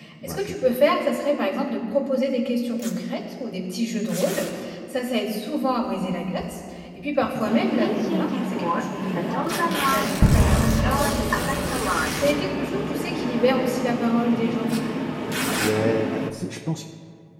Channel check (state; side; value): identical; both; correlation 1.00